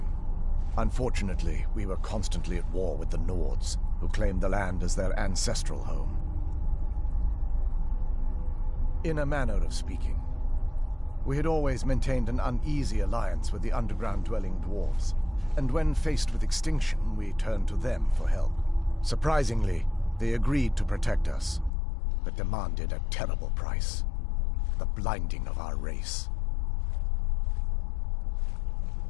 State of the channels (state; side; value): drops out; right; at 21.7 s